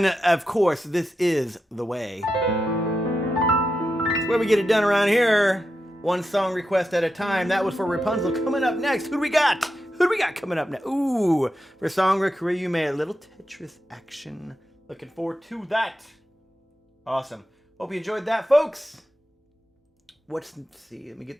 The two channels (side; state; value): both; normal; correlation 0.88